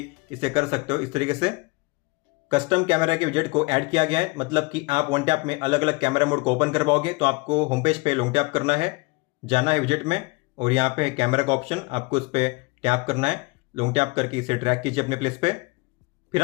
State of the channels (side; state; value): right; quieter; 26.3 dB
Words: इसे कर सकते हो। इस तरीके से कस्टम कैमरा के विजेट को ऐड किया गया है, मतलब कि आप वन टैप में अलग अलग कैमरा मोड को ओपन कर पाओगे। तो आपको होम पेज पे लॉन्ग टैप करना है, जाना है विजेट में, और यहाँ पे है कैमरा का ऑप्शन, आपको इस पर टैप करना है। लॉन्ग टैप करके इसे ड्रैग कीजिए अपने प्लेस पे। फिर